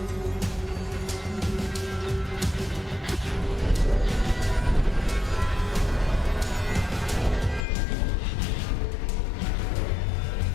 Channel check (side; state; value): right; drops out; at 7.7 s